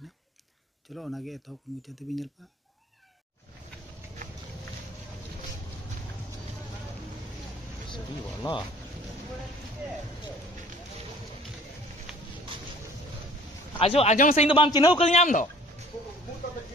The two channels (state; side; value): normal; both; correlation 0.52